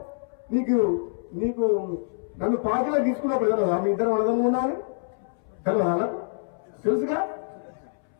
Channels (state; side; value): silent; right; 61 dB below the other